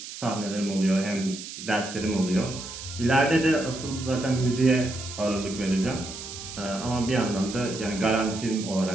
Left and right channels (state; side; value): noise; right; hiss, 11 dB below the sound